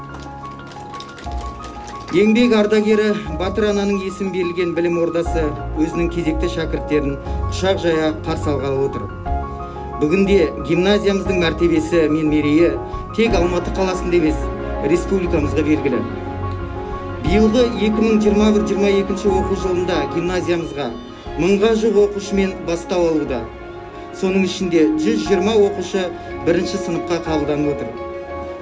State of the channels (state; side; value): identical; both; correlation 1.00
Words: Еңбек ардагері Батыр ананың есім берілген білім ордасы өзінің кезекті шәкірттерін құшақ жая қарсы алғалы отыр. Бүгінде гимназиямыздың мәртебесі мен мерейі тек Алматы қаласында емес, республикамызға белгілі. Биылғы 2021-22 оқу жылында гимназиямызға 1000-ға жуық оқушымен бастау алуда. Соның ішінде 120 оқушы 1-ші сыныпқа қабылданып отыр.